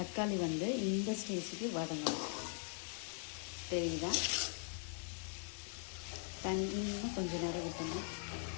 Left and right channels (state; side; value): silent; right; 50 dB below the other